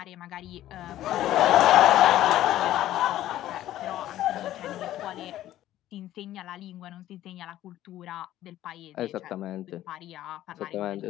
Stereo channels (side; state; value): right; quieter; 13.6 dB